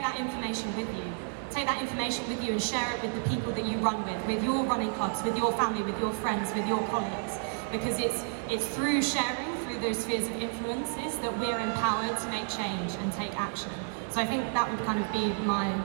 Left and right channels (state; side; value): silent; left; 57 dB below the other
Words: that information with you. Take that information with you and share it with the people that you run with your running clubs, with your family, with your friends, with your colleagues, because it's through sharing, through those spheres of influences, that we're empowered to make change and take action. So I think that would kind of be